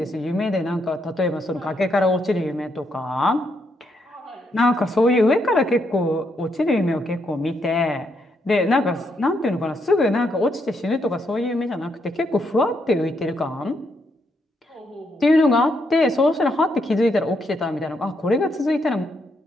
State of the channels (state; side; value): normal; both; correlation 0.77